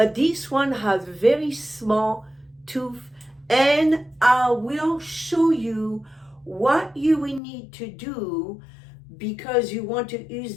this one has very small tooth, and I will show you what you will need to do because you want to use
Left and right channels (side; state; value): right; drops out; at 7.4 s